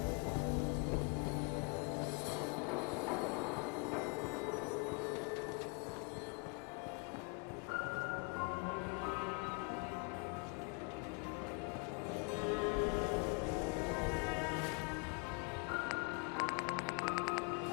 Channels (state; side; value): quieter; right; 34.9 dB